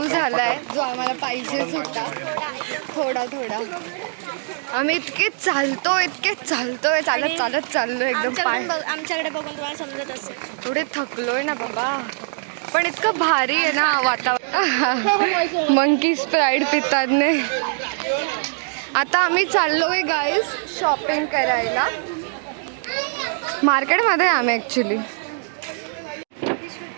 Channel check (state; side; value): silent; left; 64 dB below the other